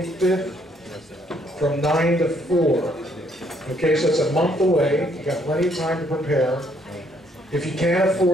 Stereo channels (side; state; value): both; normal; correlation 0.68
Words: from 9 to 4. Okay, so it's a month away. You got plenty of time to prepare. If you can't